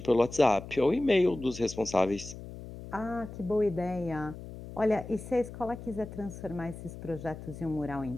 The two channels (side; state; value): left; noise; hum, 12 dB below the sound